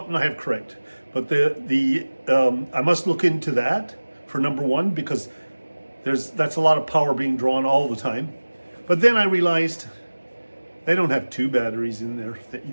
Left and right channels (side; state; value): both; inverted; correlation -1.00